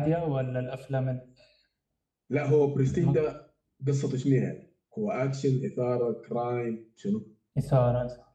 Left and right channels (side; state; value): both; identical; correlation 1.00